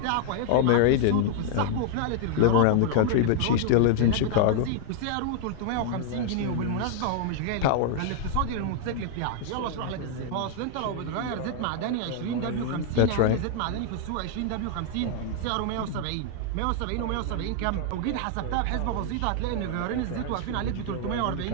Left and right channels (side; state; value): both; different; correlation 0.00